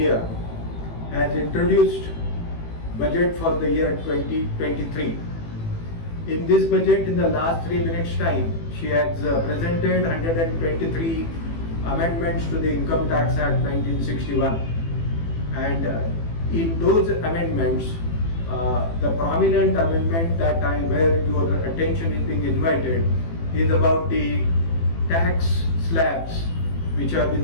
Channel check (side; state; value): right; late; 18 ms